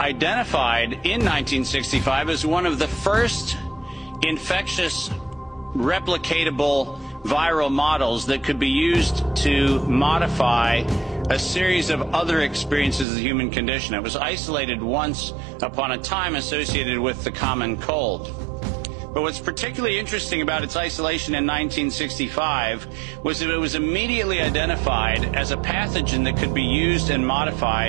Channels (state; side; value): drops out; left; at 13.1 s